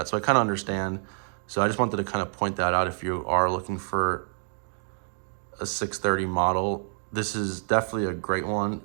So I kind of understand. So I just wanted to kind of point that out. If you are looking for a 630 model, this is definitely a great one,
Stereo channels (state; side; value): silent; left; 57 dB below the other